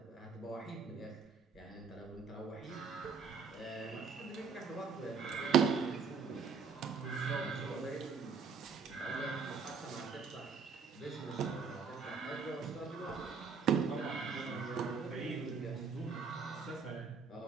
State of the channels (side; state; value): left; quieter; 5.5 dB